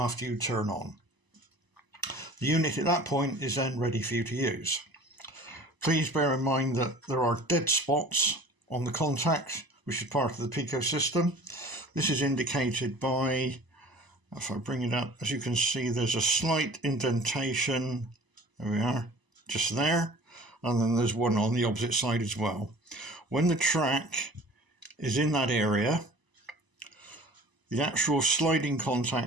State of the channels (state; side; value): late; left; 1.0 ms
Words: you turn on. The unit at that point is then ready for you to use. Please bear in mind that there are dead spots on the contact, which is part of the Peco system. This is indicated by, if I bring it up, as you can see, there's a slight indentation. There we are, just there. And then there's one on the opposite side as well. When the track is in that area, the actual sliding